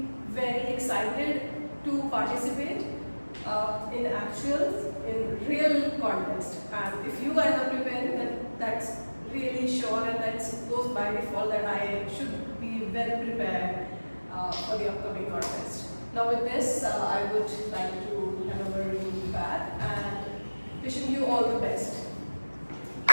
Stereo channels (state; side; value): inverted; both; correlation -1.00